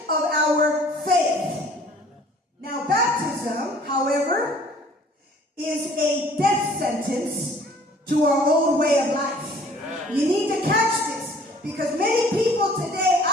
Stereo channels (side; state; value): both; normal; correlation 0.54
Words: of our faith. Now, baptism, however, is a death sentence to our old way of life. You need to catch this, because many people today,